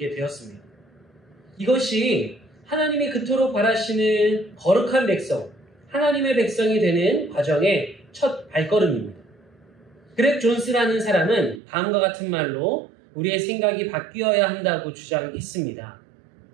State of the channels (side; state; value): left; drops out; at 11.6 s